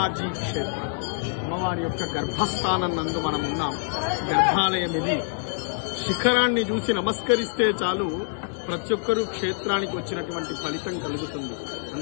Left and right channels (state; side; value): silent; right; 61 dB below the other